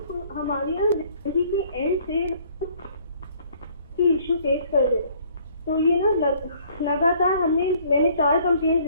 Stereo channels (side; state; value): both; inverted; correlation -0.59